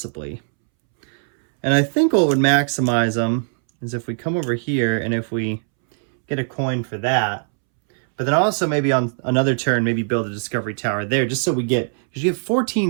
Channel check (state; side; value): silent; left; 65 dB below the other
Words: And I think what would maximize them is if we come over here and if we get a coin for that, but then also maybe on another turn, maybe build a discovery tower there, just so we get, because you have